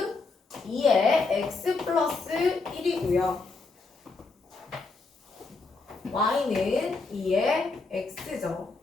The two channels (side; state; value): right; quieter; 4.0 dB